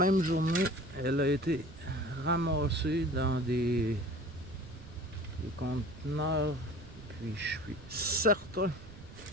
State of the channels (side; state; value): right; noise; rumble, 16 dB below the sound